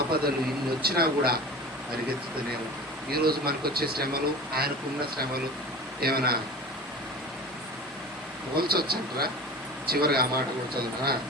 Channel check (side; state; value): both; normal; correlation 0.36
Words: ఇన్ని వచ్చినా కూడా పరిగెత్తుతూనే ఉంటాయి. ఈరోజు మనకు వచ్చే శ్రమలు, ఆయనకున్న శ్రమలు ఏమైనా పోల్చొచ్చంటారా? చివరిగా ఆ మాట కూడా చదువుతా